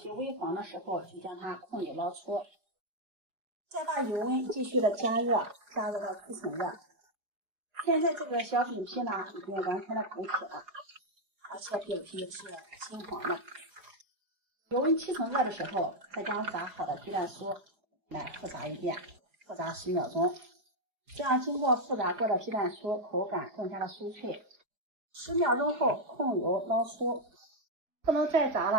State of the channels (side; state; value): left; late; 4.9 ms